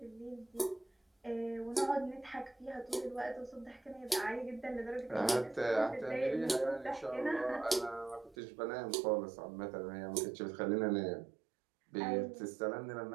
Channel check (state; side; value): drops out; left; at 8.3 s